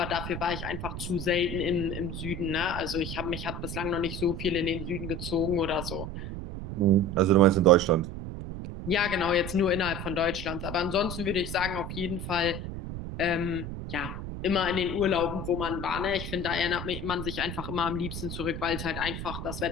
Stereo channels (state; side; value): noise; right; rumble, 7 dB below the sound